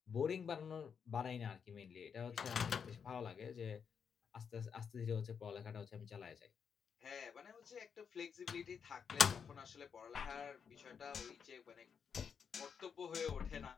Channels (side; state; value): right; quieter; 6.8 dB